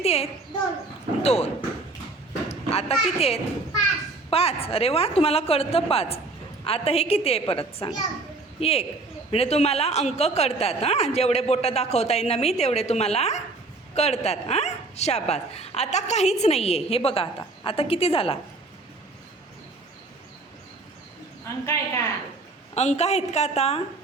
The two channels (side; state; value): left; quieter; 3.3 dB